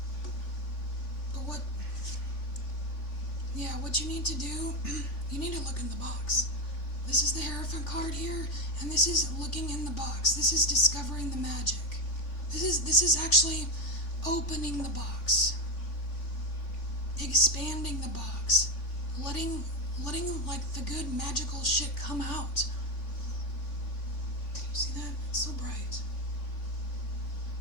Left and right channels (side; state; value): right; late; 3.5 ms